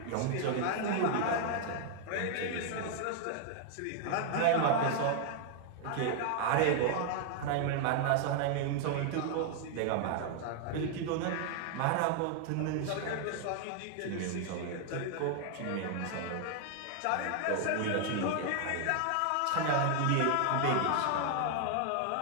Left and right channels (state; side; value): different; both; correlation 0.00